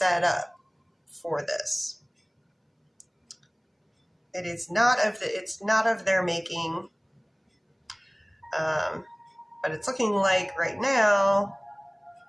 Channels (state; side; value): identical; both; correlation 1.00